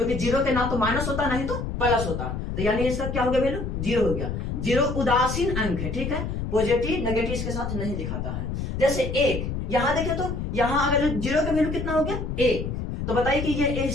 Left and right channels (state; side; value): noise; left; rumble, 4 dB below the sound